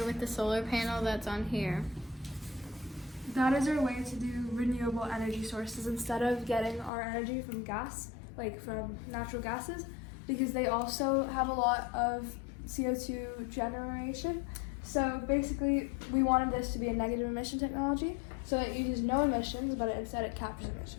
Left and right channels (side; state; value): right; drops out; at 6.9 s